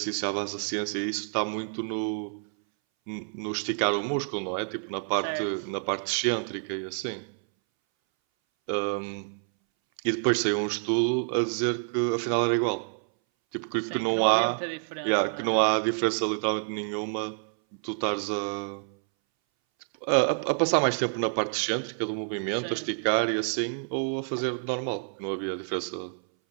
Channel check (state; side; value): silent; left; 59 dB below the other